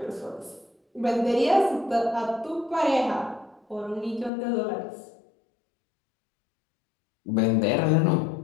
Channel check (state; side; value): drops out; right; at 4.3 s